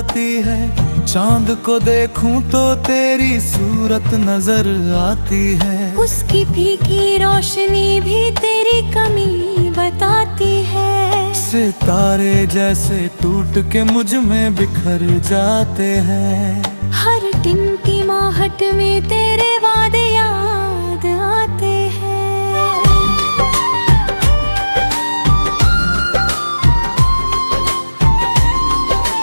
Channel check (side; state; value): both; inverted; correlation -1.00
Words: है। चांद को देखूं तो तेरी सूरत नजर आती है, उसकी फीकी रोशनी भी तेरी कमी बताती है। सितारे जैसे टूट के मुझ में बिखर जाते हैं, हर टिमटिमाहट में तेरे वादे याद आते हैं।